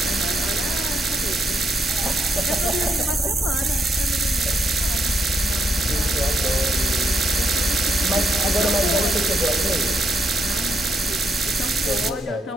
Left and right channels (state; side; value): normal; both; correlation 0.78